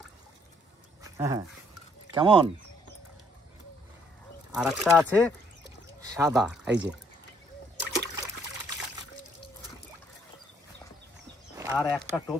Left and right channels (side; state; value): both; normal; correlation 0.66